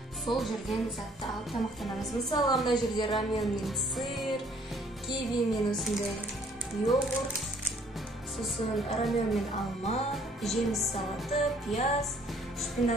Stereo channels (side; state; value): both; normal; correlation 0.61